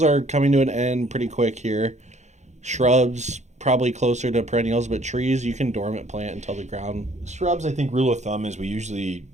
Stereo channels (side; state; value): left; late; 0.33 ms